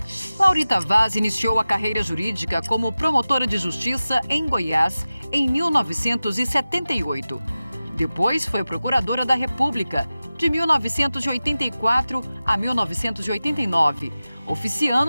Laurita Vaz iniciou a carreira jurídica como promotora de justiça em Goiás em 1978. Depois foi procuradora da República de 1984 a 1989,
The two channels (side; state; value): both; inverted; correlation -0.96